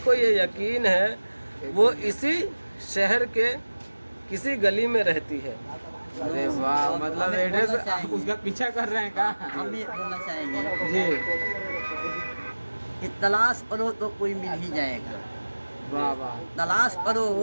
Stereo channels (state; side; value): inverted; both; correlation -1.00